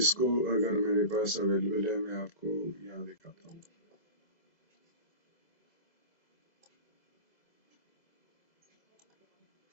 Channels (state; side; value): late; right; 2.0 ms